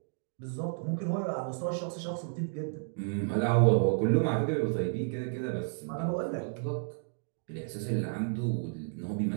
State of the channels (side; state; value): left; silent; digital silence